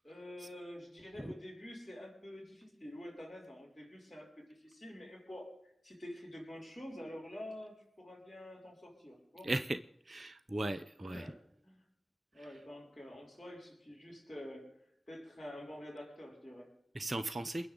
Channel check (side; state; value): both; normal; correlation 0.95